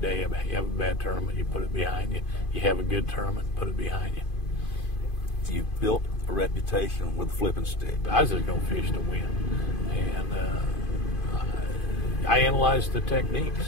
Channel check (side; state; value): right; late; 2.5 ms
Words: you have a bad tournament, you put it behind you. You have a good tournament, put it behind you. You've built a reputation with the flipping stick. I was just going to fish to win. And I analyzed the